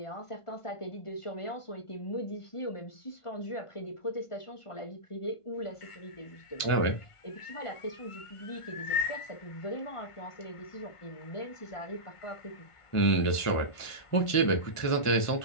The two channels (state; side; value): late; right; 1.5 ms